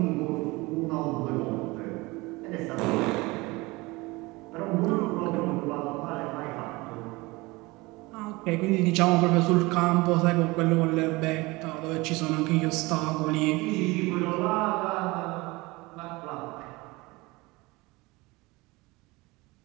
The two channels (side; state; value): left; quieter; 22.8 dB